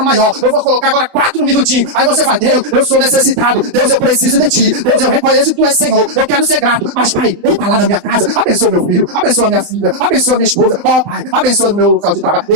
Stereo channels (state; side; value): late; left; 29 ms